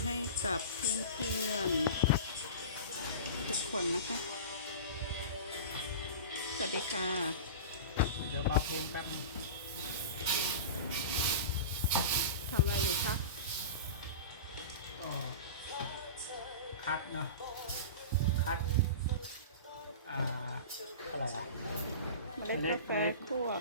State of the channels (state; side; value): inverted; both; correlation -0.31